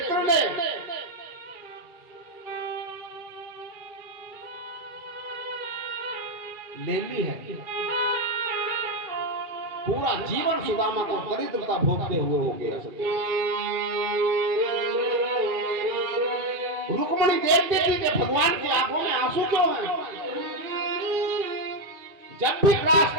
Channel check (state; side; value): late; left; 2.3 ms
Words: ने ले ली है। पूरा जीवन सुदामा को दरिद्रता भोगते हुए हो गया। रुक्मिणी देखती थी कि भगवान की आंखों में आंसू क्यों हैं। जब भी ग्रास